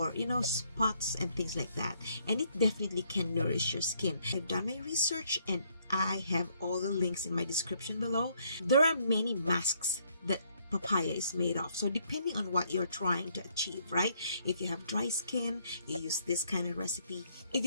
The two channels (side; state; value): both; inverted; correlation -0.70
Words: spots and things like that. And it definitely can nourish your skin. I've done my research and I have all the links in my description below. There are many masks that papaya is made of, so depending on what you're trying to achieve, right? If you have dry skin, you use this kind of recipe. If